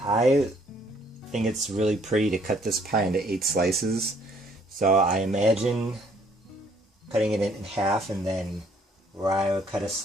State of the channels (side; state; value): both; normal; correlation 0.63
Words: think it's really pretty to cut this pie into 8 slices. So I imagine cutting it in half, and then where I would cut a